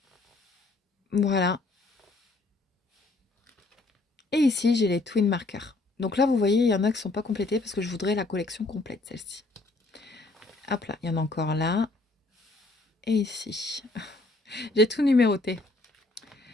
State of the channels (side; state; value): right; quieter; 3.1 dB